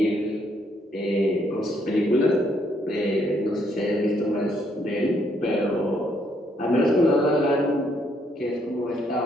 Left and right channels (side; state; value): both; normal; correlation 0.71